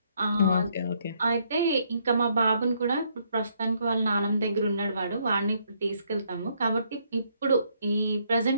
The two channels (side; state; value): both; inverted; correlation -0.71